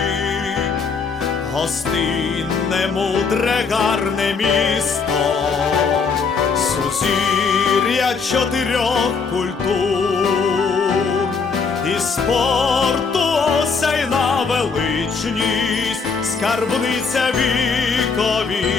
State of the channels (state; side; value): quieter; right; 5.1 dB